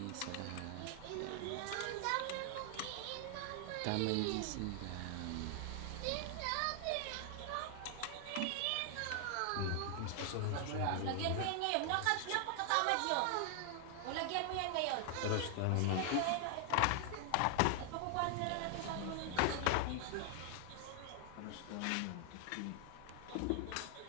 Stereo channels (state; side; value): different; both; correlation 0.00